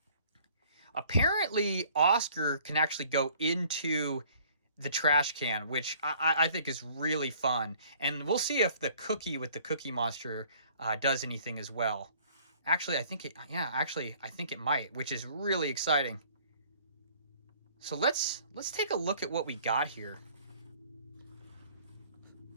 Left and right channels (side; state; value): both; inverted; correlation -0.55